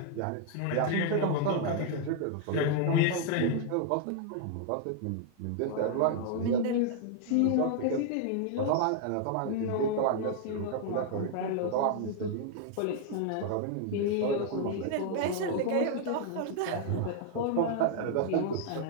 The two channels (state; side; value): different; both; correlation 0.00